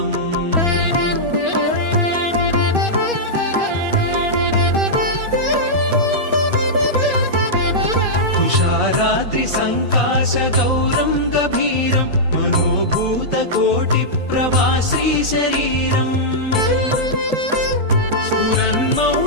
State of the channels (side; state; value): both; normal; correlation -0.10